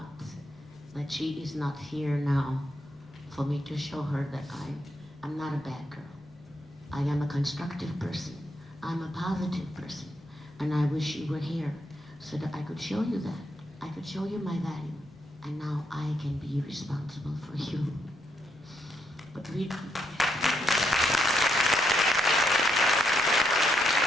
that she is not here now for me to show her that I'm not a bad girl. I am a constructive person. I'm a positive person. And I wish you were here so that I could show you that. I could show you my value. And now I can be responsible for you. But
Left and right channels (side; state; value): both; normal; correlation 0.78